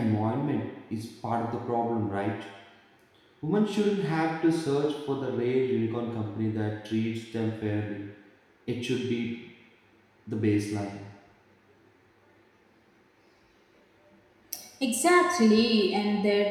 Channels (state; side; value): identical; both; correlation 1.00